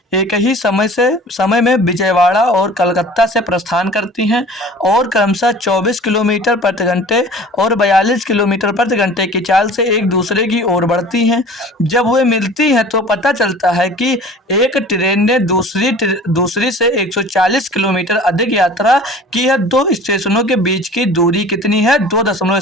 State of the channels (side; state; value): both; normal; correlation 0.44